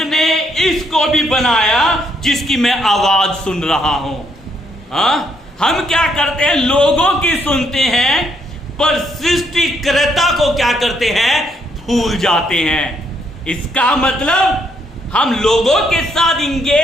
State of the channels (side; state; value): both; normal; correlation 0.73